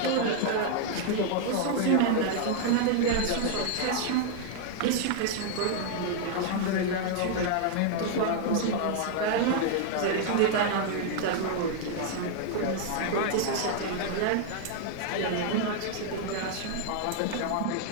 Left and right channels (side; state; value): both; different; correlation 0.00